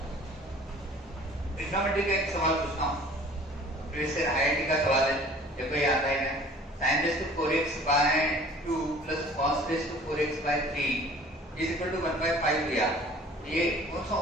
ट्रिग्नोमेट्री का एक सवाल पूछता हूँ, फिर से आईआईटी का सवाल है, देखो ये आता है sin raised to 4x by 2 plus cos raised to 4x by 3 is equal to 1/5 लिया। ये कौन सा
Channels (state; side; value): normal; both; correlation 0.49